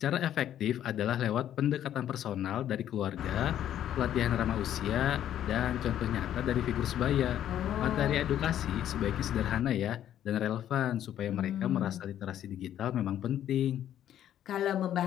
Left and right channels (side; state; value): right; quieter; 11.0 dB